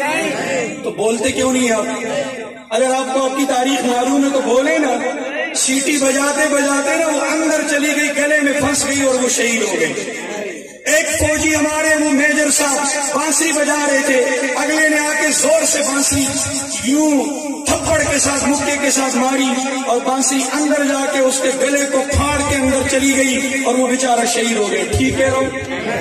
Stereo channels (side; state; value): both; identical; correlation 1.00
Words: تو بولتے کیوں نہیں آپ؟ اگر آپ کو آپ کی تاریخ معلوم ہے تو بولے نا۔ سیٹی بجاتے بجاتے نا وہ اندر چلی گئی، گلے میں پھنس گئی اور وہ شہید ہو گئی۔ ایک فوجی ہمارے وہ میجر صاحب بانسری بجا رہے تھے، اگلے نے آ کے زور سے بانسری یوں تھپڑ کے ساتھ مکے کے ساتھ ماری اور بانسری اندر جا کے اس کے گلے کو پھاڑ کے اندر چلی گئی اور وہ بیچارہ شہید ہو گیا۔ ٹھیک ہے